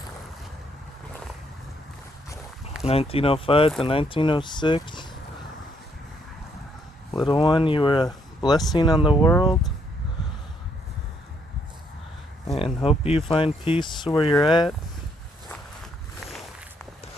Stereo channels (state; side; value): normal; both; correlation 0.71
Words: 1905 to 1906. Little one, you were a blessing on the world. And hope you find peace where you're at.